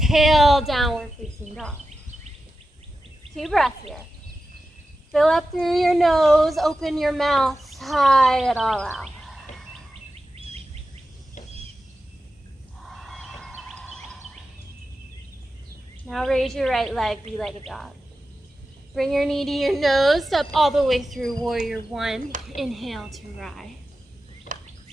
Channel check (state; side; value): normal; both; correlation 0.92